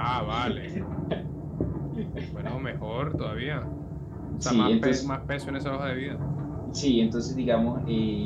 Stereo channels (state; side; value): identical; both; correlation 1.00